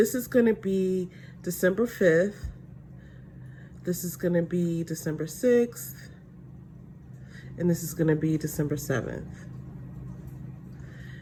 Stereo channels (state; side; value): identical; both; correlation 1.00